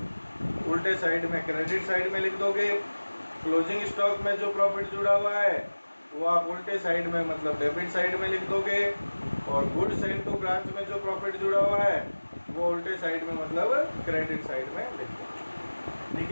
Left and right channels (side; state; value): both; inverted; correlation -1.00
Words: उल्टे साइड में क्रेडिट साइड में लिख दोगे, क्लोजिंग स्टॉक में जो प्रॉफिट जुड़ा हुआ है वो आप उल्टे साइड में मतलब डेबिट साइड में लिख दोगे, और गुड्स एंड टू ब्रांच में जो प्रॉफिट जुड़ा हुआ है वो उल्टे साइड में मतलब क्रेडिट साइड में लिख दोगे, ठीक